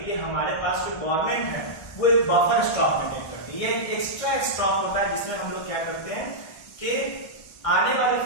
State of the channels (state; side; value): late; right; 1.4 ms